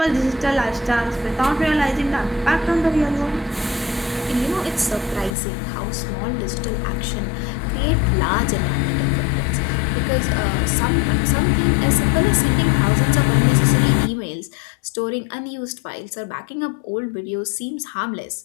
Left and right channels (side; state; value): right; drops out; at 5.4 s